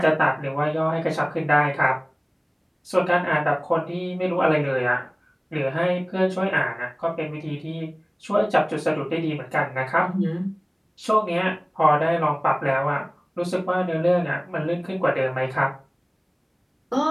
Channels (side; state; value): both; identical; correlation 1.00